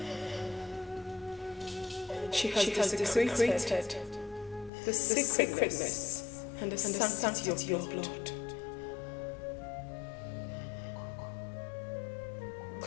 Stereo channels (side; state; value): right; drops out; at 4.7 s